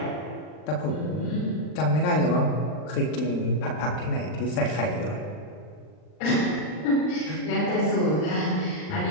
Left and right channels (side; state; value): right; late; 39 ms